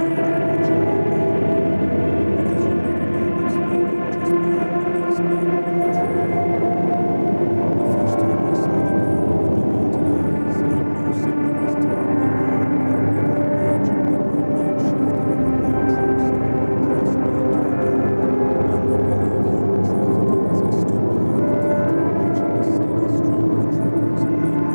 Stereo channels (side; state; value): both; inverted; correlation -1.00